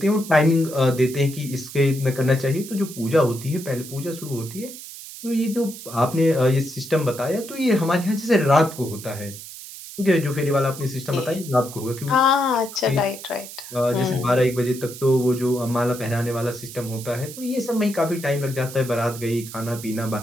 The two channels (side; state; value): right; noise; hiss, 13 dB below the sound